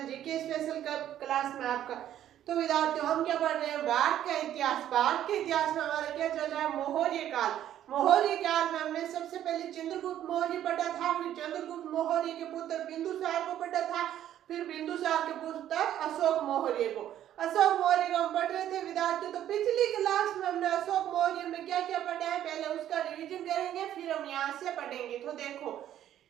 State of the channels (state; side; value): quieter; left; 11.4 dB